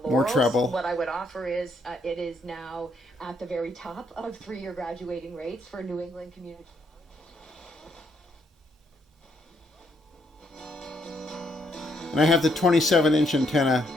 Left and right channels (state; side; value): normal; both; correlation 0.72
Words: more treble. What I would offer is it is now at the very top of 3-year graduating rates for New England community. And I have the 27-inch antenna